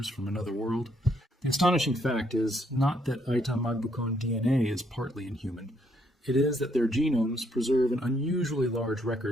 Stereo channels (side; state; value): both; normal; correlation 0.72